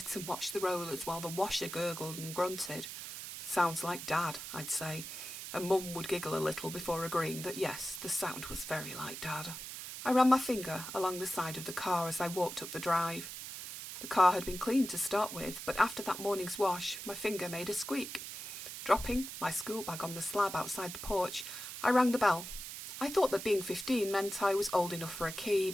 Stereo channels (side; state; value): right; noise; hiss, 9 dB below the sound